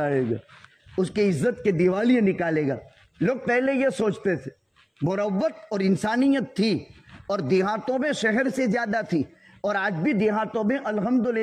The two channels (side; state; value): both; identical; correlation 1.00